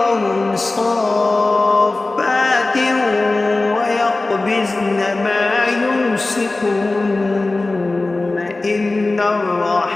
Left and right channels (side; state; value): right; quieter; 3.2 dB